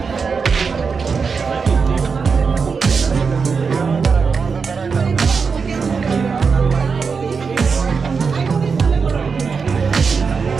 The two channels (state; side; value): quieter; left; 5.4 dB